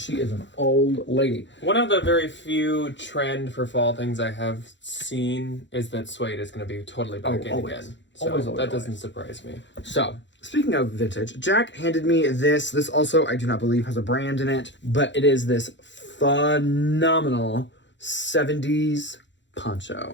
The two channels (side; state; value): right; late; 0.53 ms